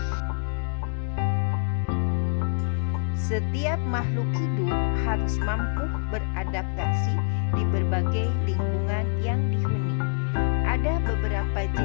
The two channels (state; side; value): silent; right; digital silence